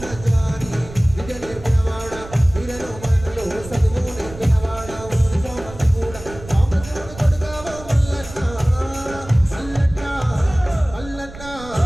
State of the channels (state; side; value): noise; right; rumble, 15 dB below the sound